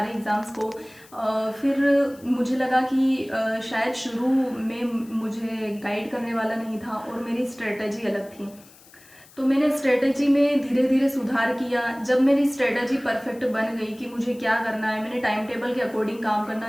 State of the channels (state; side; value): noise; left; hiss, 25 dB below the sound